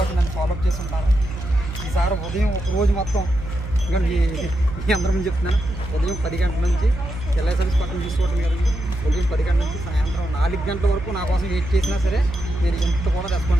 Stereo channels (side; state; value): right; noise; hum, 8 dB below the sound